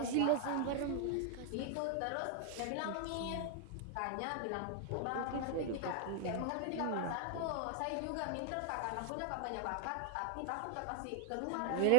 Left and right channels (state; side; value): different; both; correlation 0.00